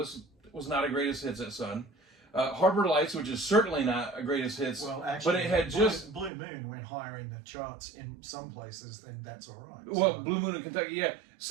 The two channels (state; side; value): drops out; left; at 6.3 s